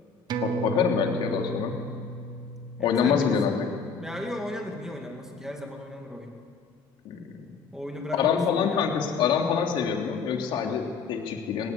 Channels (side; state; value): right; quieter; 5.3 dB